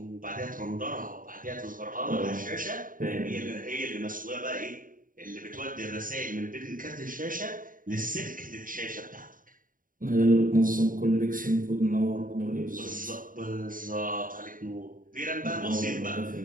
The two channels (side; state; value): left; late; 0.40 ms